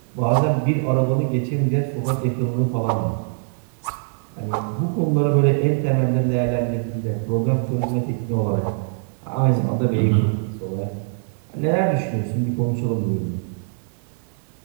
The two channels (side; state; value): left; silent; digital silence